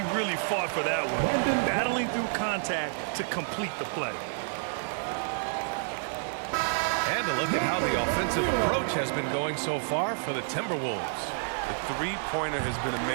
really fought for that one. Battling through contact to complete the play. And a look at how the offensive approach has been going so far for the Timberwolves. The three-pointer has been a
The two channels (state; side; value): silent; left; digital silence